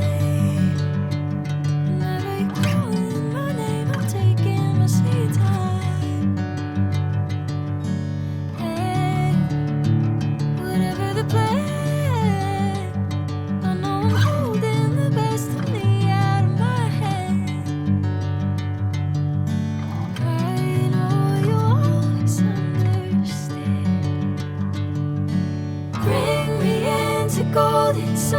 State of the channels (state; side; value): identical; both; correlation 1.00